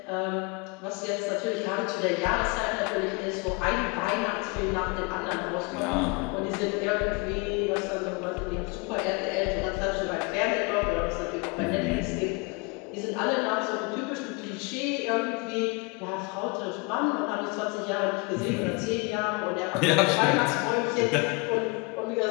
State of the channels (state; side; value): quieter; right; 29.8 dB